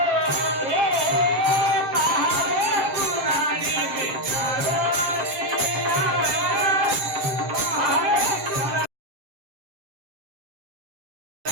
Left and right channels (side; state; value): left; late; 7.5 ms